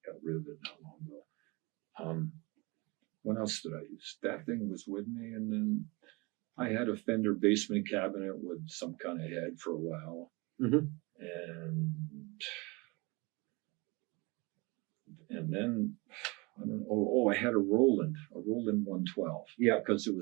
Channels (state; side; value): quieter; left; 26.7 dB